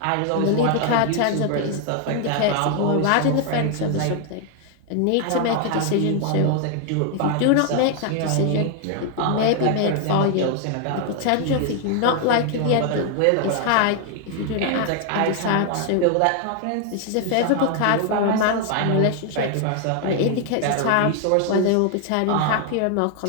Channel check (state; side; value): different; both; correlation 0.00